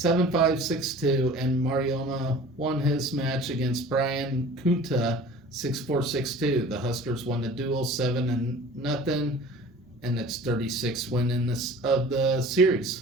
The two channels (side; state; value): both; normal; correlation 0.44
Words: 6-2, and Marioma won his match against Brian Kunta 6-4, 6-2. The Huskers won the duel 7-0, and its 36th win in of the